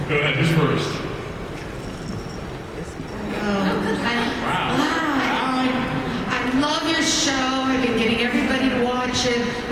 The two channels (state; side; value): identical; both; correlation 1.00